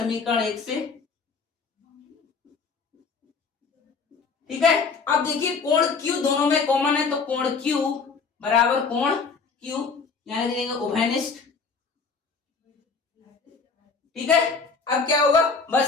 1 से। ठीक है, अब देखिए कोण Q दोनों में कॉमन है, तो कोण Q बराबर कोण Q, यहां लिख देंगे उभयनिष्ठ। ठीक है, अब क्या होगा,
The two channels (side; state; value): right; quieter; 4.9 dB